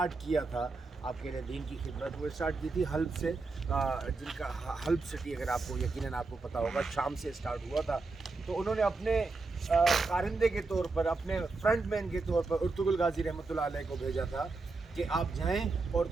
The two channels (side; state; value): left; quieter; 3.8 dB